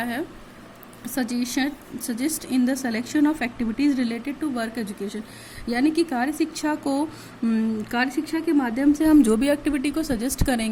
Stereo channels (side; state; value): both; identical; correlation 1.00